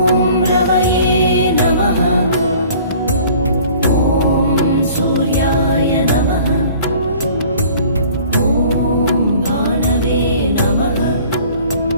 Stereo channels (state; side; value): inverted; both; correlation -0.50